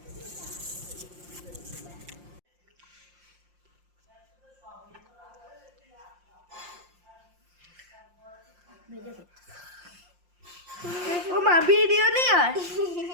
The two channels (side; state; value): left; late; 5.7 ms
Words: মা ভিডিও নেই আর